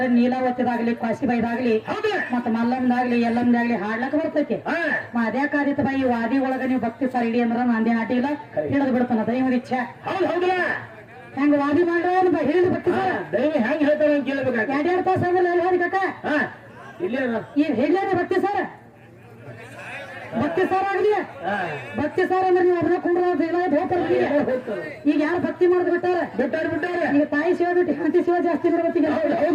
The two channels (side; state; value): both; identical; correlation 1.00